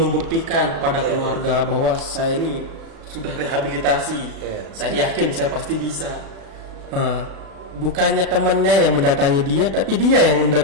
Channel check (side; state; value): left; late; 36 ms